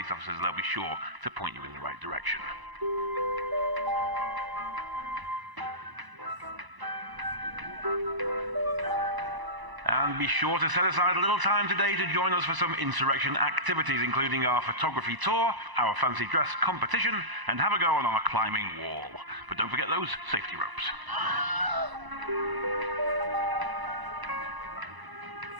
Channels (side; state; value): left; late; 1.0 ms